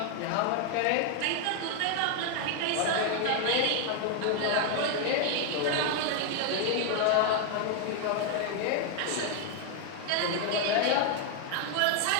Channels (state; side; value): different; both; correlation 0.00